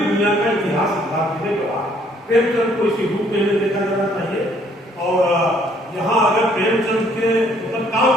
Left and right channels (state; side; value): normal; both; correlation 0.64